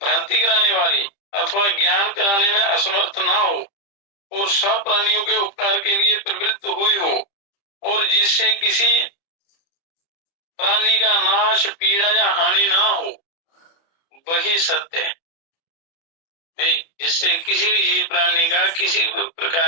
भ्रांति कराने वाली, अथवा ज्ञान कराने में असमर्थ ना हो और सब प्राणियों के उपकार के लिए प्रवृत्त हुई हो, और जिससे किसी प्राणी का नाश, पीड़ा या हानि ना हो, वही सत्य है। जिससे किसी भी जीव प्राणी का किसी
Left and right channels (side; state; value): right; late; 30 ms